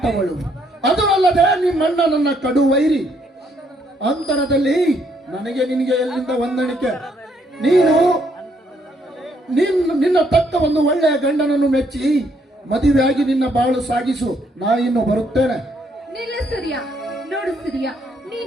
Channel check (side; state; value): both; normal; correlation 0.71